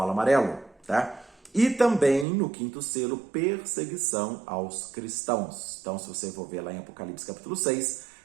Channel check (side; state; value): left; drops out; at 2.2 s